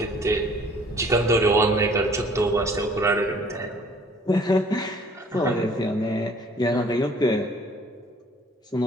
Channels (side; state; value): both; normal; correlation 0.56